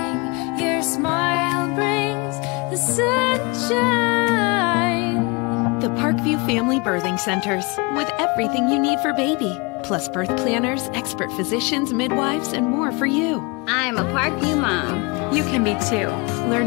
your smile brings the sunshine. The Parkview Family Birthing Centers, with everything you need for baby, plus birth planners, expert physicians, midwives, and more for you. I'm a Parkview mom. You can be too.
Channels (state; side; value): quieter; right; 28.1 dB